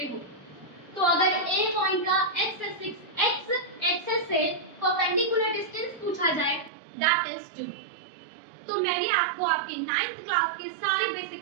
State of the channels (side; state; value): left; drops out; at 6.7 s